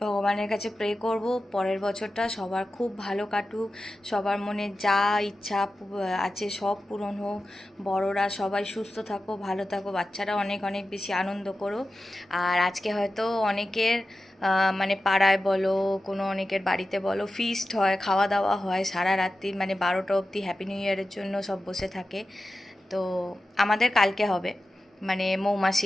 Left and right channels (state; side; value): normal; both; correlation 0.93